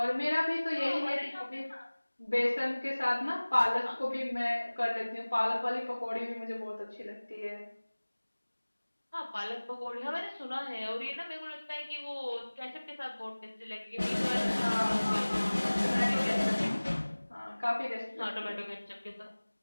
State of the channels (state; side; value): inverted; both; correlation -1.00